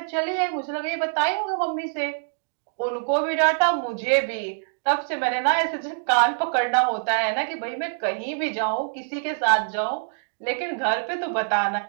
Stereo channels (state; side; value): silent; left; digital silence